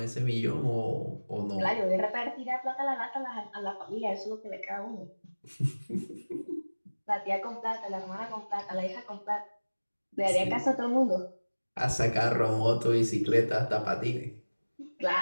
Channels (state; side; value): inverted; both; correlation -1.00